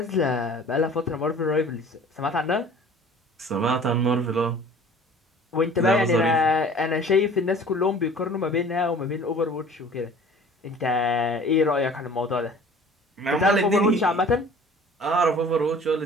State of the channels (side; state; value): both; normal; correlation 0.47